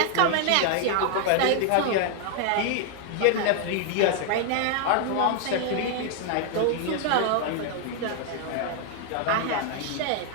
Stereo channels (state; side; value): different; both; correlation 0.00